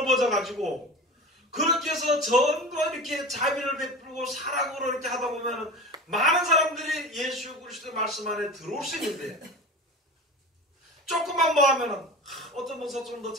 그렇게 해서 전부 이렇게 자비를 베풀고 사랑으로 이렇게 하다 보면 많은 사람들이 예수 그리스도의 말씀 안에 들어올 수 있는데, 조금만 뭐 하면은 어떤 목사 좀 더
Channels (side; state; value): both; normal; correlation 0.31